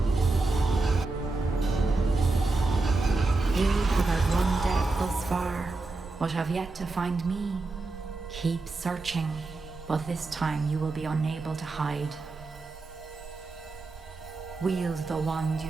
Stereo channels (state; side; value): quieter; left; 3.5 dB